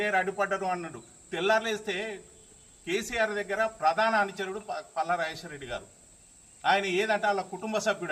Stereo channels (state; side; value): identical; both; correlation 1.00